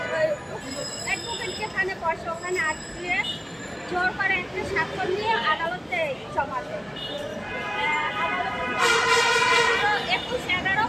অ্যাডভোকেট যেখানে বসে ওখানে আটকে জোর করে একটা স্বাক্ষর নিয়ে আদালতে জমা দেয়।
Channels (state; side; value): identical; both; correlation 1.00